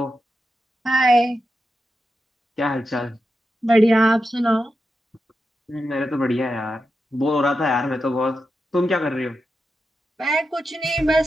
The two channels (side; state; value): both; normal; correlation 0.88